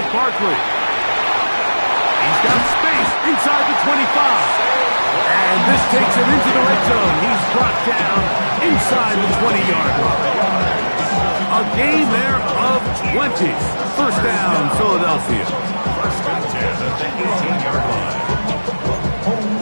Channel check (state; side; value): inverted; both; correlation -1.00